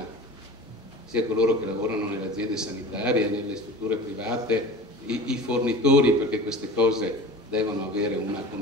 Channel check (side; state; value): both; normal; correlation 0.37